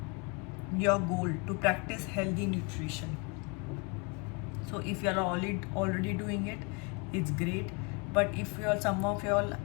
Your goal to practice healthy nutrition. So if you are already doing it, it's great. But if you are, some of you all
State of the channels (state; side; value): quieter; right; 32.3 dB